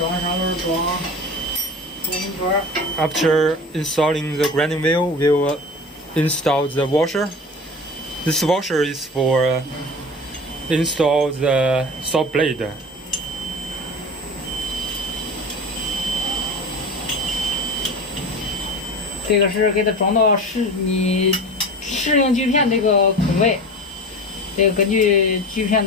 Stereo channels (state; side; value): normal; both; correlation 0.34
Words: 完砂轮装红圈。 After installing the grinding wheel, we will install the washer. This washer is for install the saw blade. 这个是给它装到你适应锯片这个孔位，这个根据锯片